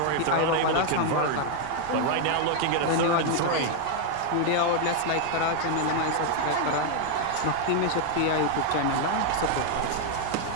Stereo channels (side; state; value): both; different; correlation 0.00